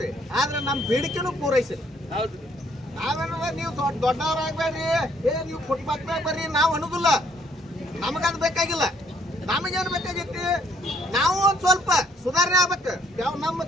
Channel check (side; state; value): both; normal; correlation 0.65